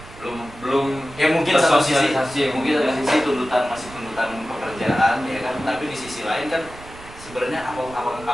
belum Ya mungkin satu sisi tersosialisasi, mungkin satu sisi tuntutan masih tuntutan pekerjaan ya kan, tapi di sisi lain kan sebenarnya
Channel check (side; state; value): right; noise; rumble, 18 dB below the sound